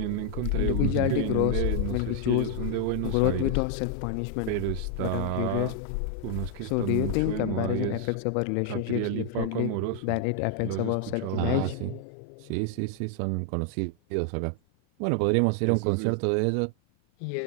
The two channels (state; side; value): different; both; correlation 0.00